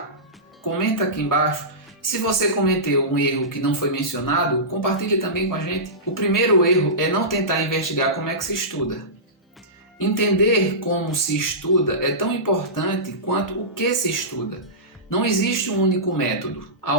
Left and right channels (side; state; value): both; normal; correlation -0.18